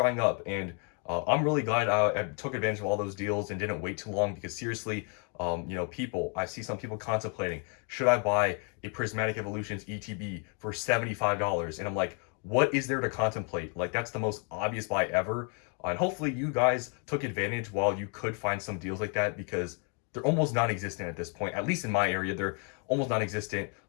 up. And I'm really glad I took advantage of all those deals and didn't wait too long, because seriously, I see some people contemplating, should I buy a Prismatic Evolutions ETB for $75? And I'm like, what is there to contemplate? Like, that's the most obvious buy ever. And hopefully you guys took advantage while you could find some deals like that, because they're almost non-existent at this point. At least in my area, they're almost non-existent.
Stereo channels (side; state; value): right; quieter; 39.0 dB